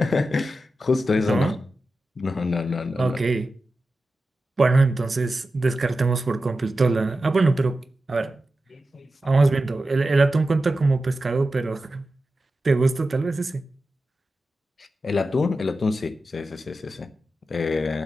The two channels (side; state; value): both; normal; correlation 0.92